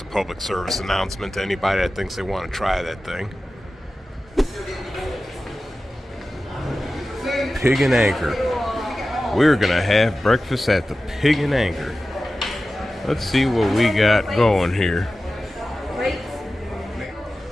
a public service announcement to anybody that thinks they want to try that thing. Pig and Anchor. We're gonna have breakfast at the Pig and Anchor. Let's see what we got going here.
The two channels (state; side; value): normal; both; correlation 0.94